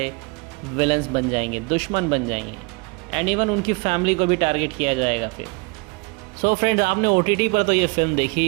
विलन्स बन जाएंगे, दुश्मन बन जाएंगे, एंड इवन उनकी फैमिली को भी टारगेट किया जाएगा फिर। सो फ्रेंड्स, आपने OTT पर तो ये फिल्म देखी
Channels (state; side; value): quieter; left; 29.6 dB